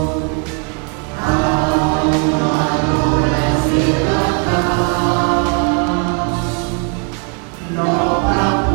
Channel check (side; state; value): left; quieter; 37.1 dB